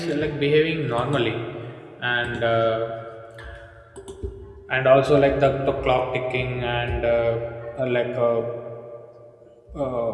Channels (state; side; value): identical; both; correlation 1.00